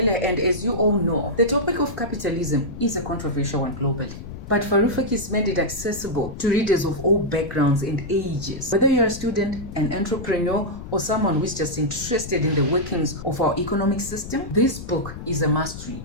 and as you all know, the topic of capitalism is a controversial one globally. But Varoufakis made it accessible to readers of all backgrounds and ages. Whether you're a student, an entrepreneur, or someone who's just interested in the workings of our economic system, this book is a must read.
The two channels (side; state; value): left; noise; rumble, 11 dB below the sound